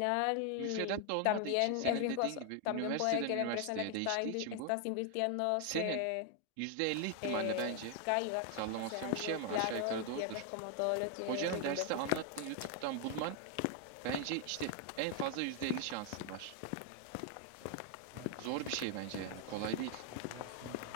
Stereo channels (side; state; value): both; different; correlation 0.00